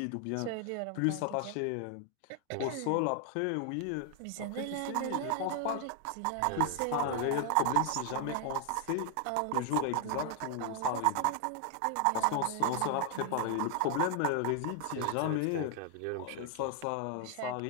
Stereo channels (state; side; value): different; both; correlation 0.00